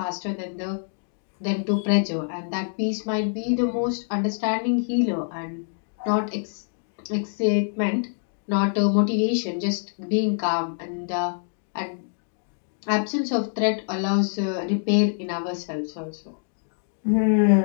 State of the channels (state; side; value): silent; right; digital silence